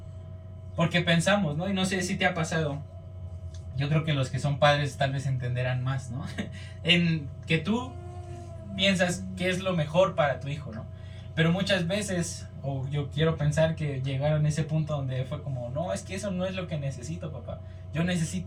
porque pensamos, ¿no? Y no sé si te ha pasado, yo creo que los que son padres tal vez entenderán más, ¿no? En que tú piensas que es lo mejor para tu hijo, ¿no? Pero muchas veces, o yo quiero pensar que llegaron a ese punto donde fue como, no, es que eso no es lo que necesito, papá. Yo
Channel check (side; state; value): both; identical; correlation 1.00